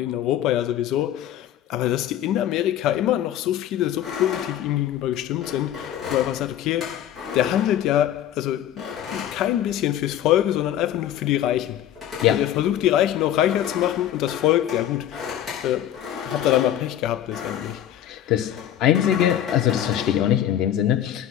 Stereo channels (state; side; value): quieter; right; 11.3 dB